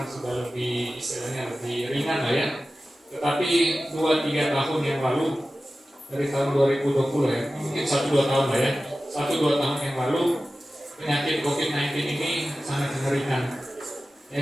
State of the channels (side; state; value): both; normal; correlation 0.95